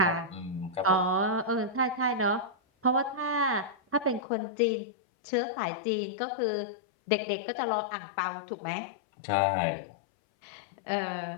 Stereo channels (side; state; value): right; drops out; at 4.2 s